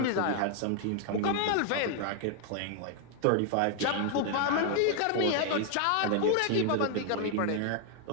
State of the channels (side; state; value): both; different; correlation 0.00